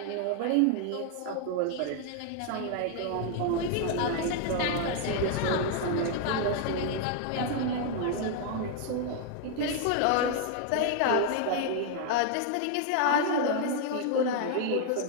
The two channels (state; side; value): different; both; correlation 0.00